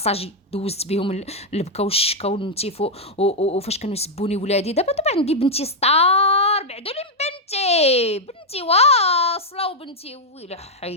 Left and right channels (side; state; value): both; normal; correlation -0.01